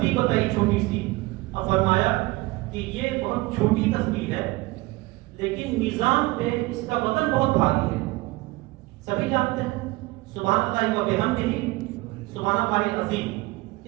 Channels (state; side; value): quieter; left; 21.3 dB